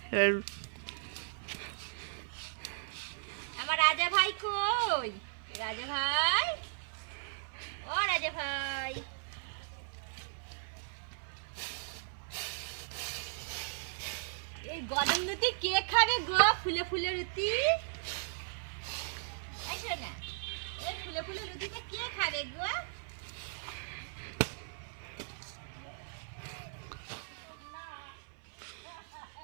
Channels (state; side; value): silent; left; 53 dB below the other